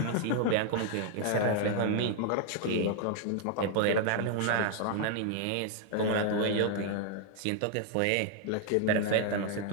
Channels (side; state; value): both; different; correlation 0.00